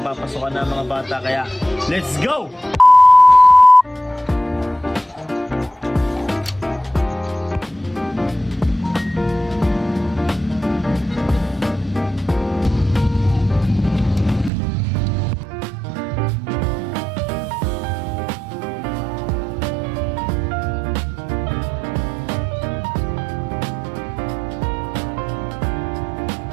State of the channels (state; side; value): drops out; left; at 14.5 s